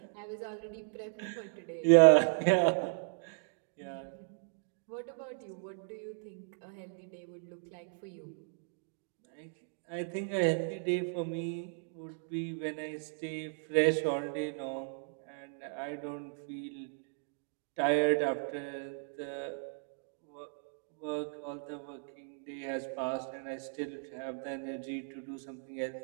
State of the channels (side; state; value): left; silent; digital silence